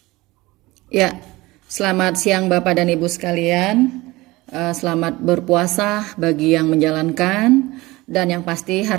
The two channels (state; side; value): quieter; left; 20.5 dB